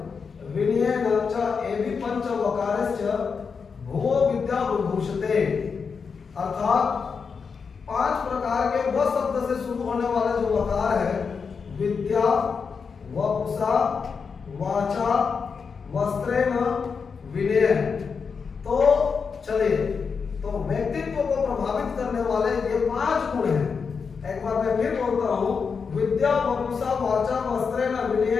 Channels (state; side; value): quieter; right; 5.6 dB